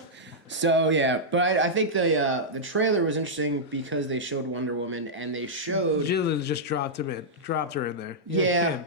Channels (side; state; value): both; normal; correlation -0.09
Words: So yeah, but I think the trailer was interesting because they showed Wonder Woman, and they showed Jill just dropped her in there. Yeah,